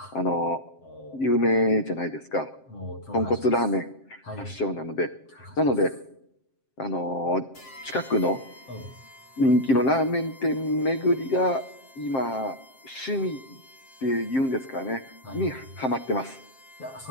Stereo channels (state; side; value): late; right; 7.6 ms